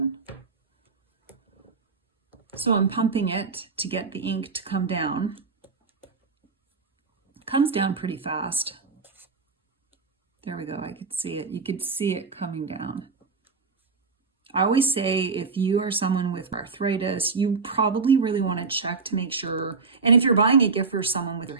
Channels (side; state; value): left; quieter; 4.6 dB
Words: So I'm pumping it to get the ink to come down. It comes down pretty fast. There we go, I could see it. You could see it coming down. I always say if you are someone with arthritis, you probably really want to check to make sure, and if you're buying a gift for someone with their